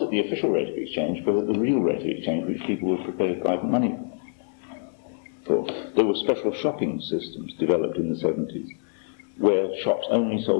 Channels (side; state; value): right; silent; 61 dB below the other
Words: at the official rate of exchange, but at the real rate of exchange which people were prepared to buy money for. There were special shopping systems developed in the 70s, where shops only